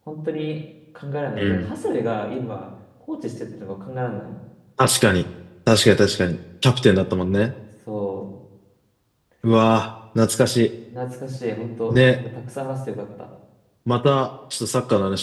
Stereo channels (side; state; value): both; identical; correlation 1.00